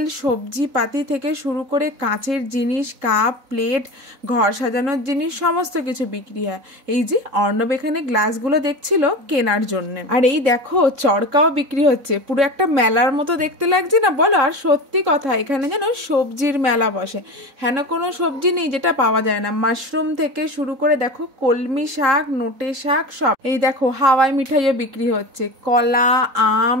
সবজিপাতি থেকে শুরু করে কাঁচের জিনিস, কাপ প্লেট, ঘর সাজানোর জিনিস সমস্ত কিছু বিক্রি হয়। এই যে অর্ণব এখানে গ্লাসগুলো দেখছিল কেনার জন্য, আর এই দেখো চরকাও বিক্রি হচ্ছে। পুরো একটা মেলার মতো দেখতে লাগছে না বলো? আর সত্যি কথা, এখানে যেন সবজির মেলা বসে, হেন কোনো সবজি নেই যেটা পাওয়া যায় না। মাশরুম থেকে শুরু করে দেখো কলমি শাক, নোটে শাক, সব। এই দেখো হাওয়াই মিঠাইও বিক্রি হচ্ছে, কলা, আম,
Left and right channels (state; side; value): late; left; 4.0 ms